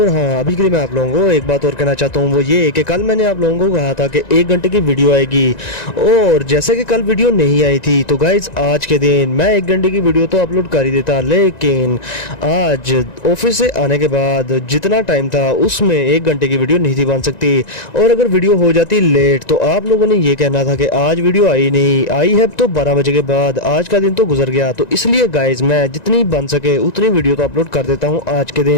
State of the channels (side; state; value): right; late; 1.9 ms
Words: हाँ अभी के लिए मैं आप लोगों को एक बात और कहना चाहता हूँ, वो ये कि कल मैंने आप लोगों को कहा था कि 1 घंटे की वीडियो आएगी और जैसे कि कल वीडियो नहीं आई थी तो गाइस आज के दिन मैं 1 घंटे की वीडियो तो अपलोड कर ही देता, लेकिन आज ऑफिस से आने के बाद जितना टाइम था उसमें 1 घंटे की वीडियो नहीं थी बन सकती, और अगर वीडियो हो जाती लेट तो आप लोगों ने ये कहना था कि आज वीडियो आई नहीं, आई है तो 12 बजे के बाद, आज का दिन तो गुजर गया। तो इसलिए गाइस मैं जितनी बन सके उतनी वीडियो तो अपलोड कर देता हूं आज के